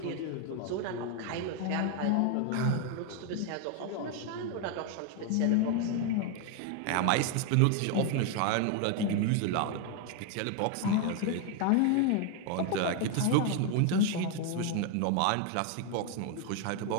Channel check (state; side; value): different; both; correlation 0.01